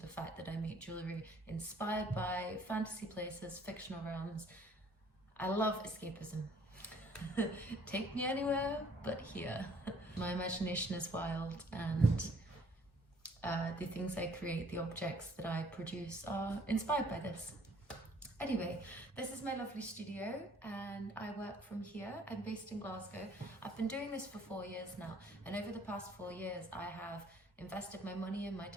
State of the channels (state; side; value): normal; both; correlation 0.59